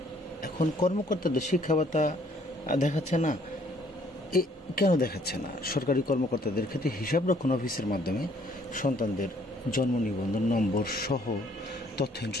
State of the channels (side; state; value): both; normal; correlation 0.62